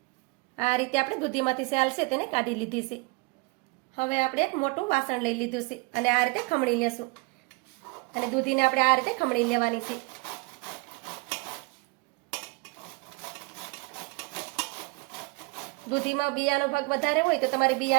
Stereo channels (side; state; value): left; quieter; 28.4 dB